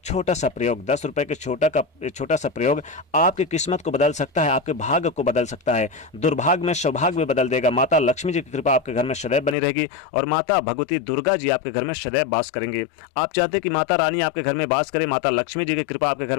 छोटा सा प्रयोग। 10 रुपए के छोटा सा प्रयोग आपकी किस्मत को बदल सकता है, आपके भाग्य को बदल सकता है, दुर्भाग्य में सौभाग्य में बदल देगा। माता लक्ष्मी जी की कृपा आपके घर में सदैव बनी रहेगी और माता भगवती दुर्गा जी आपके घर में सदैव वास करेंगे। आप चाहते हैं कि माता रानी आपके घर में वास करे, माता लक्ष्मी जी की कृपा आपके घर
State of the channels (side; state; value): right; drops out; at 9.6 s